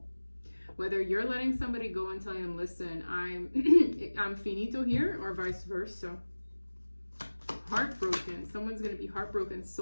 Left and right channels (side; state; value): both; inverted; correlation -1.00